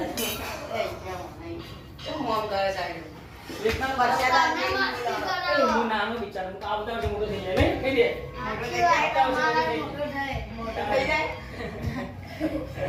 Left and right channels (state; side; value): identical; both; correlation 1.00